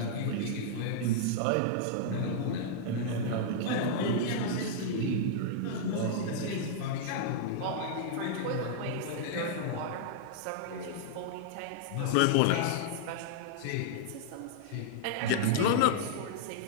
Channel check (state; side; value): different; both; correlation -0.01